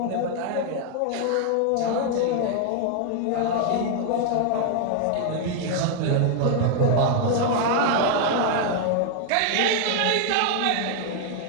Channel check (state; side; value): different; both; correlation 0.00